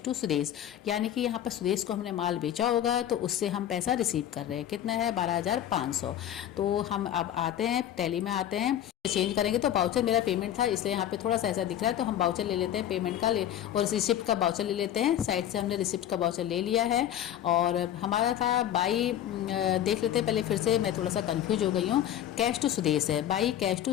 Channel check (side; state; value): right; quieter; 11.2 dB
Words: टू सुदेश, यानी कि यहाँ पर सुदेश को हमने माल बेचा होगा तो उससे हम पैसा रिसीव कर रहे हैं, कितना है 12,500। तो हम अब आते हैं टैली में, आते हैं चेंज करेंगे, तो बाउचर मेरा पेमेंट था इसलिए यहाँ पे थोड़ा सा ऐसा दिख रहा है, तो हम बाउचर ले लेते हैं पेमेंट का और रिसिप्ट का बाउचर ले लेते हैं। साइड से हमने रिसिप्ट का बाउचर ले लिया है, और हमारा था बाई, देख लेते हैं पहले फिर से, मैं थोड़ा सा कंफ्यूज हो गई हूँ। कैश टू सुदेश है, बाई कैश